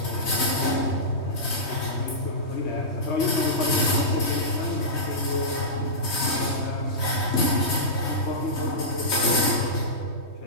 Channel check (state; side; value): late; right; 3.2 ms